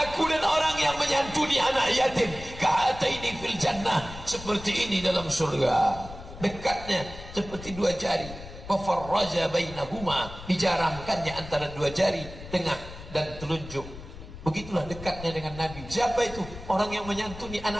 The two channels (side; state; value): left; noise; rumble, 14 dB below the sound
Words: dan orang yang menyantuni anak yatim. Ka'ataini fil jannah. Seperti ini dalam surga. Dekatnya seperti dua jari. Fafarraja bainahuma. Dijarangkannya antara dua jari, tengah dan telunjuk. Begitulah dekatnya dengan Nabi. Siapa itu? Orang yang menyantuni